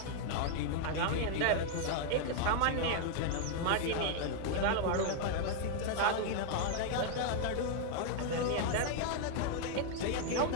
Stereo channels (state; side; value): different; both; correlation 0.00